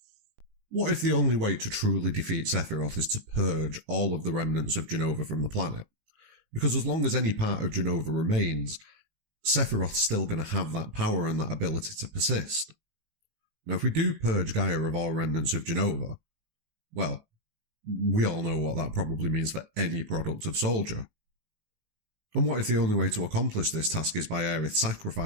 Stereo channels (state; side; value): late; left; 19 ms